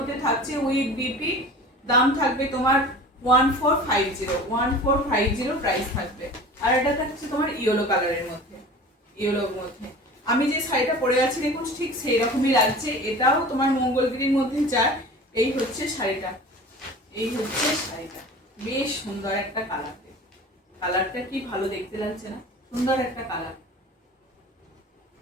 থাকছে উইথ বিপি। দাম থাকবে তোমার 1450 প্রাইস থাকবে। আর এটা থাকছে তোমার ইয়েলো কালারের মধ্যে, ইয়েলোর মধ্যে। আমি যে শাড়িটা পরে আছি দেখুন ঠিক সেই রকমই লাগছে, এটাও তোমার মঙ্গলগিরির মধ্যে যায়। এই হচ্ছে শাড়িটা, এই হচ্ছে শাড়িটা, বেশ সুন্দর একটা কালার। কালারটা কি ভালো দেখতে লাগছে না, সুন্দর একটা কালার।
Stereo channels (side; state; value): both; normal; correlation 0.39